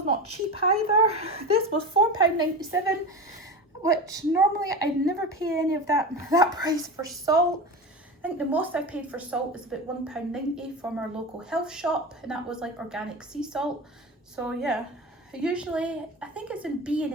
not cheap either. This was £4.97, which normally I'd never pay any of that price for salt. I think the most I paid for salt is about £1.90 from our local health shop, and that was like organic sea salt. So yeah, usually I think it's in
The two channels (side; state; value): both; normal; correlation 0.26